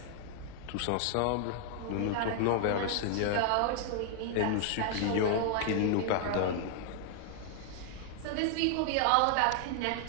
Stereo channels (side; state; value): both; different; correlation 0.00